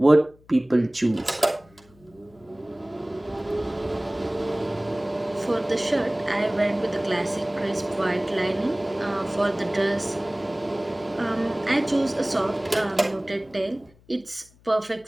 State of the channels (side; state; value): left; noise; hum, 28 dB below the sound